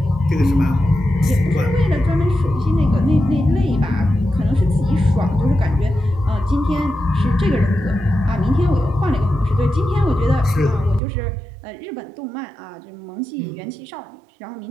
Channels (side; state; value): left; drops out; at 11.0 s